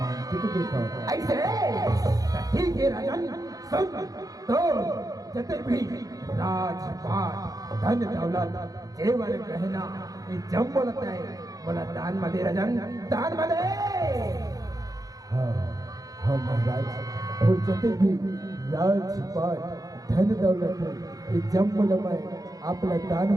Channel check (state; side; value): late; left; 0.17 ms